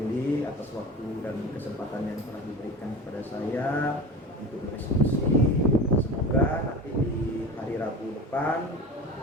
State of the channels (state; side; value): normal; both; correlation 0.33